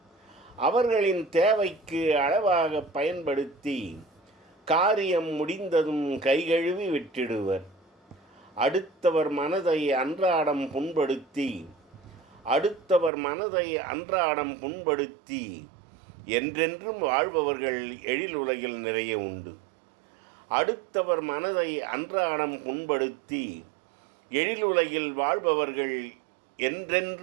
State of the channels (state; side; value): drops out; left; at 13.1 s